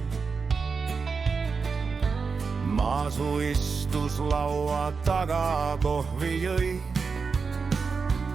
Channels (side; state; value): left; quieter; 5.1 dB